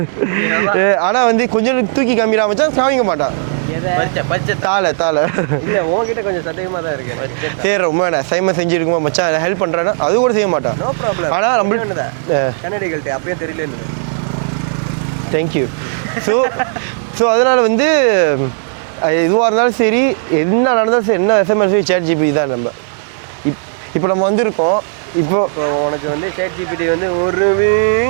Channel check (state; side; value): silent; left; digital silence